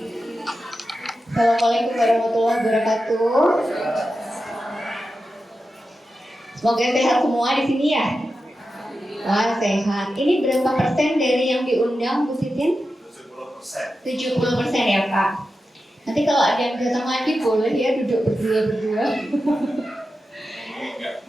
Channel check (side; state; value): both; normal; correlation 0.91